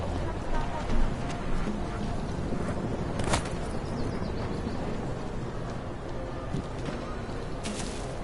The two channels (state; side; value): identical; both; correlation 1.00